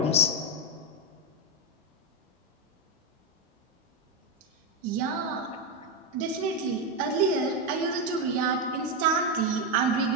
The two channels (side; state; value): both; normal; correlation 0.07